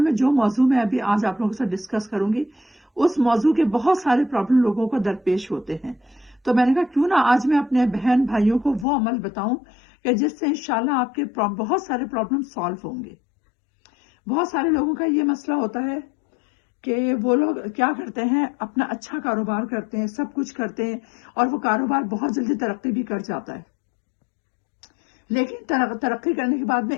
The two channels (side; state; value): right; drops out; at 8.8 s